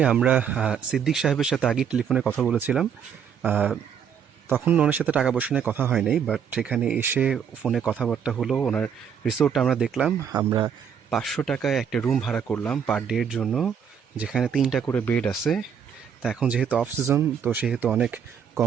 আমরা সিদ্দিক সাহেবের সাথে আগে টেলিফোনে কথা বলেছিলাম। তখন ওনার সাথে টাকা পয়সা নিয়ে কথা হয় নাই, বাট এখানে এসে ফোনে কথাবার্তা হলো। ওনার রিসোর্টটা আমরা দেখলাম। আমরা 500 টাকায় একটা রুম ভাড়া করলাম পার ডের জন্য, যেখানে 3টা করে বেড আছে। তা এখন যেহেতু অফ সিজন, তো সেহেতু অনেক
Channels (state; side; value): quieter; left; 7.7 dB